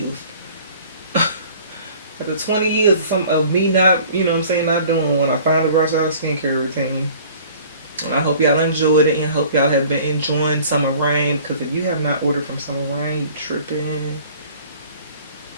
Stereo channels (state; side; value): inverted; both; correlation -0.50